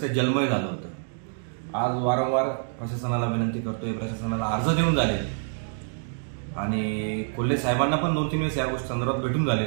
जलमय झालं होतं। आज वारंवार प्रशासनाला विनंती करतोय, प्रशासनाला अर्ज देऊन झाले आणि कोल्हे साहेबांना पण 2-3 वेळेस या गोष्टी संदर्भात भेटून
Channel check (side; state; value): left; silent; digital silence